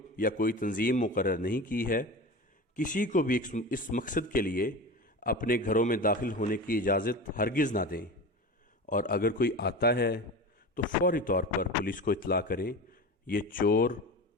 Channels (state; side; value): normal; both; correlation 0.29